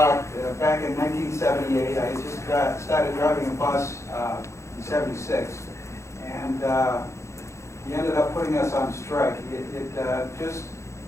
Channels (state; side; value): late; right; 0.14 ms